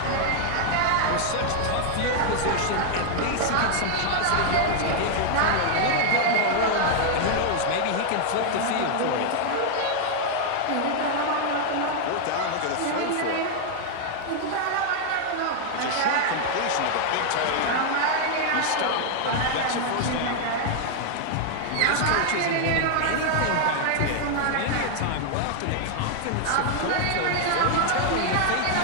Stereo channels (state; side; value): different; both; correlation 0.00